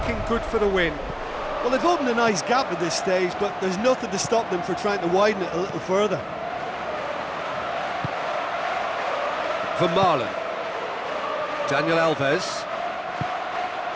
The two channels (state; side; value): identical; both; correlation 1.00